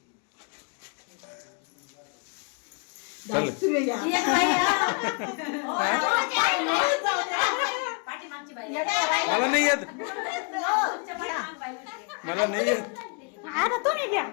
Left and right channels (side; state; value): right; quieter; 37.1 dB